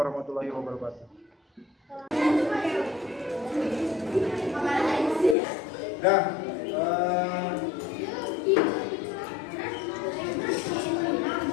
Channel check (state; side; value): drops out; right; at 5.4 s